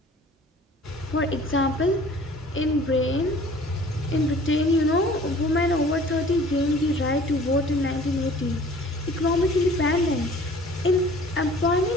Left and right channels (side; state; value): both; normal; correlation 0.50